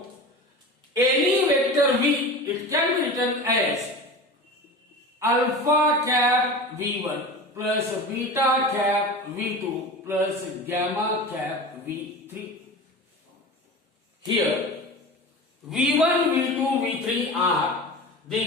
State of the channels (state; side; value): normal; both; correlation 0.31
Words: any vector V, it can be written as alpha cap V1 plus beta cap V2 plus gamma cap V3. Here V1, V2, V3 are